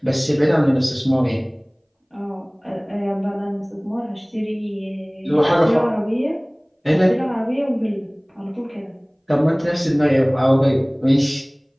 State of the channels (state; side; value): identical; both; correlation 1.00